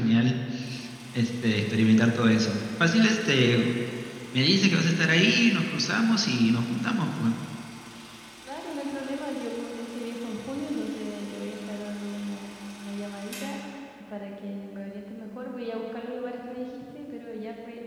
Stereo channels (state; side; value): identical; both; correlation 1.00